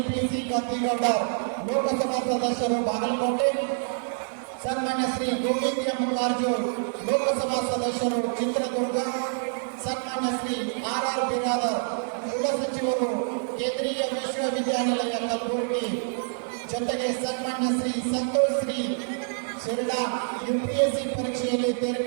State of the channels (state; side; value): silent; left; 60 dB below the other